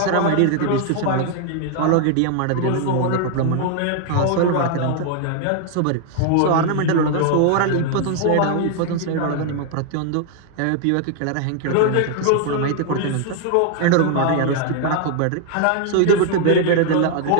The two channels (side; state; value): both; different; correlation 0.00